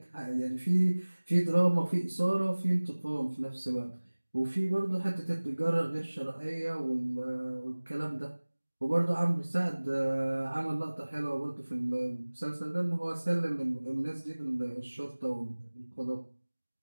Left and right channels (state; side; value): inverted; both; correlation -1.00